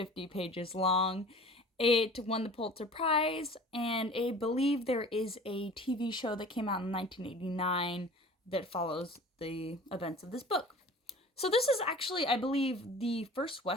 pages long. It won the Pulitzer Prize, and I believe there is a TV show that came out in 1989 that follows the events of this book. So this is actually, I believe, the first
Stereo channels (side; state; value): both; normal; correlation 0.43